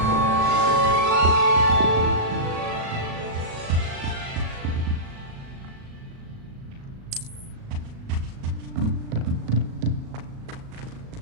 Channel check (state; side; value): late; left; 37 ms